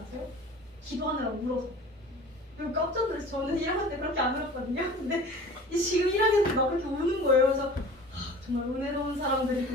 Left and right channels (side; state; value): both; normal; correlation 0.42